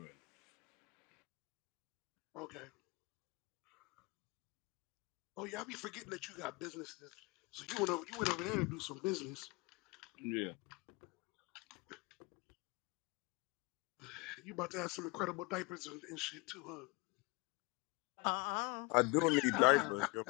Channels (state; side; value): quieter; right; 27.0 dB